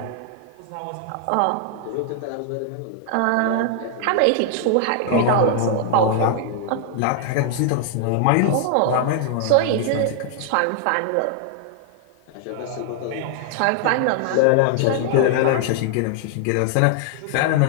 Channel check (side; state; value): both; different; correlation 0.00